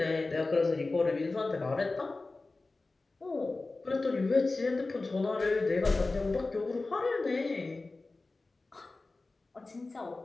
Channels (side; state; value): right; quieter; 3.4 dB